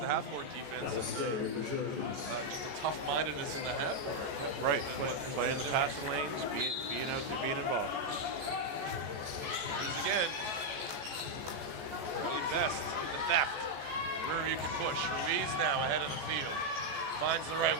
the half court defense and just the tough-mindedness in the half court. Right. Playing the passing lanes, being out there, being involved. Here it is again. Early best, the theft. Riverview can push. Ruiz now ahead of the field. Finds the right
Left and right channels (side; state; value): left; late; 14 ms